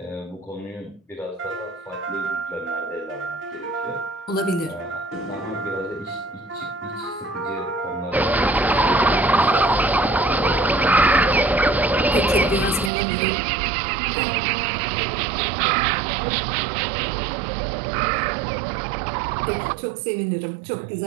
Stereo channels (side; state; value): left; drops out; at 12.9 s